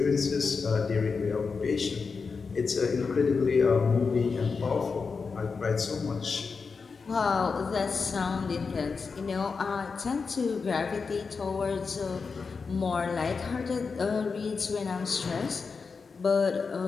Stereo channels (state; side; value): quieter; right; 5.0 dB